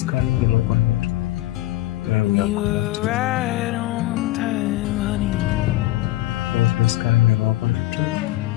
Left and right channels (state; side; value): quieter; right; 16.4 dB